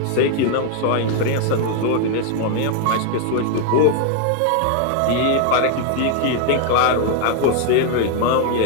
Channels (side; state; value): both; different; correlation 0.00